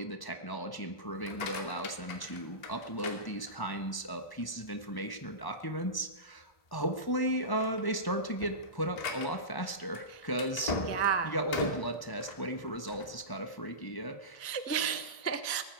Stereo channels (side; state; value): right; late; 1.1 ms